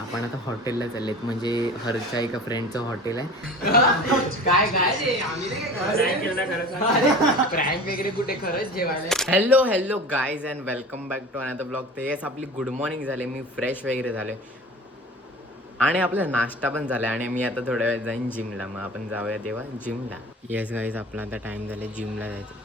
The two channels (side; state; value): both; normal; correlation 0.38